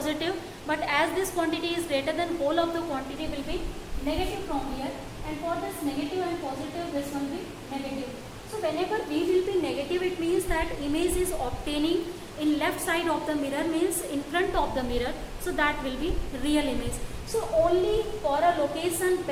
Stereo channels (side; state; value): both; identical; correlation 1.00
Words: but as this quantity is greater than whole of the quantity will be negative from here, and for this negative and positive this will be negative. So whenever V will be negative, it means that image is obtaining in left side of the mirror, means in front of the mirror, so that will be real image. So only for a location